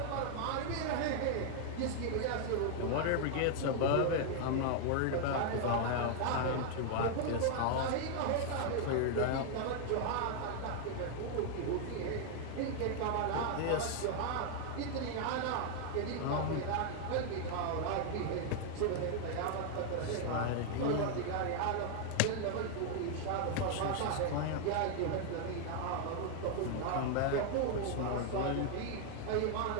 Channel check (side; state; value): both; different; correlation 0.00